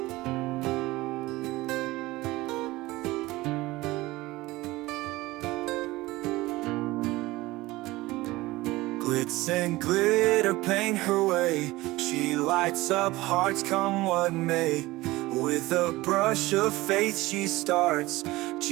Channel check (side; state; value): left; quieter; 19.4 dB